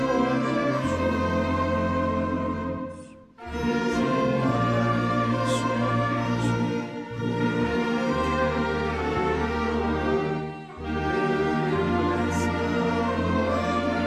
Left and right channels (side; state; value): both; identical; correlation 1.00